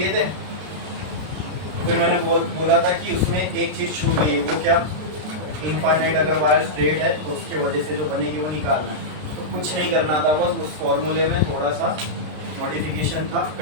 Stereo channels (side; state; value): left; late; 33 ms